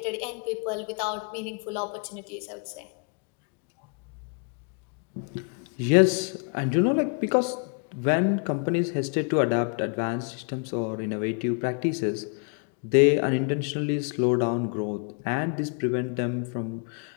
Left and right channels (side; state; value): right; quieter; 39.4 dB